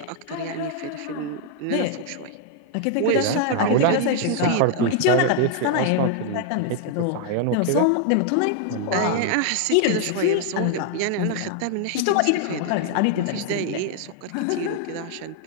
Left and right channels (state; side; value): different; both; correlation 0.00